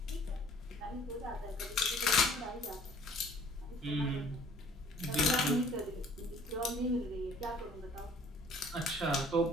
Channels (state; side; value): normal; both; correlation 0.55